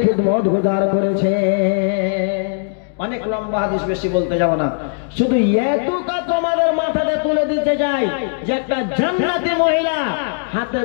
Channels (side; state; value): right; silent; digital silence